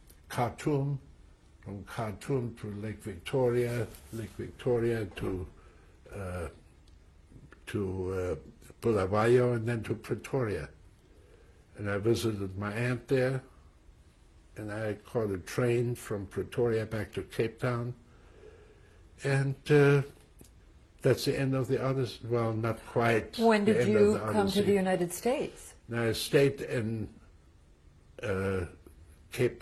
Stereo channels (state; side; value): identical; both; correlation 1.00